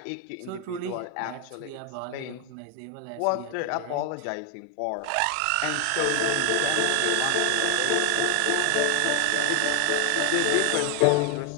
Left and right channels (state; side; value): different; both; correlation 0.00